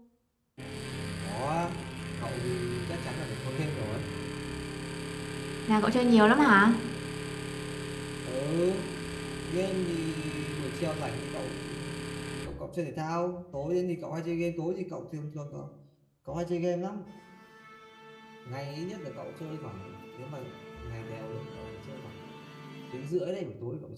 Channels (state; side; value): identical; both; correlation 1.00